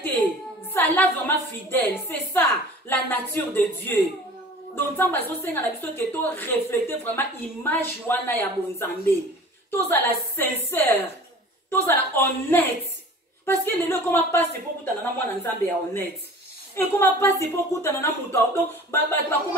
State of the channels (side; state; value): both; normal; correlation 0.43